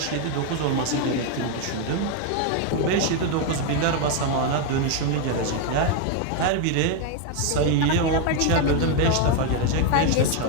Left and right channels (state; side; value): different; both; correlation 0.01